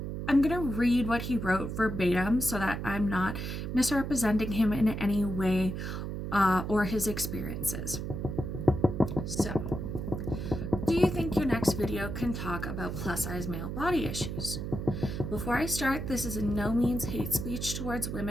I'm gonna read what he wrote verbatim so that I'm not misrepresenting him in any way or his experiences. So, do you think your next video can talk about plus size male body issues? Before I start, this is in no means hate speech towards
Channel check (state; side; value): noise; right; hum, 5 dB below the sound